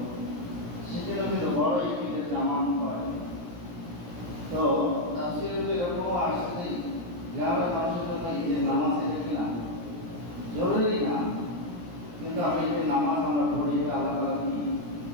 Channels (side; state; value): left; late; 17 ms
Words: সেখানে কিন্তু বড় একটি ঈদের জামাত হয়। তো তাফসীরে এরকম আসছে গ্রামের মানুষের জন্য ঈদের নামাজ এটা কিনা জরুরি না, কিন্তু আমি ঈদের নামাজ আমরা পড়ি, এটা আল্লাহ তাআলার কি